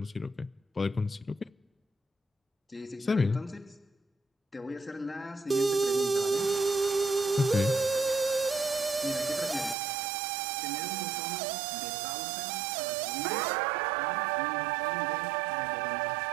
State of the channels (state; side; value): drops out; left; at 9.8 s